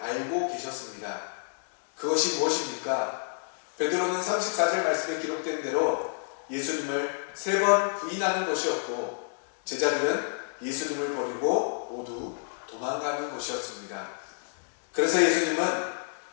계셨습니다. 그것이 무엇입니까? 베드로는 34절 말씀에 기록된 대로 예수님을 3번 부인하는 것이었고 제자들은 예수님을 버리고 모두 도망가는 것이었습니다. 그래서 예수님은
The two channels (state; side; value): silent; right; digital silence